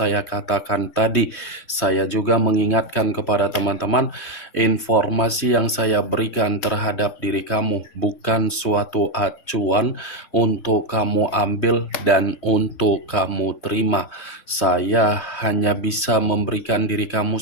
katakan tadi, saya juga mengingatkan kepada teman-teman, informasi yang saya berikan terhadap diri kamu bukan suatu acuan untuk kamu ambil dan untuk kamu terima. Saya hanya bisa memberikan diri kamu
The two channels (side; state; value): right; late; 3.2 ms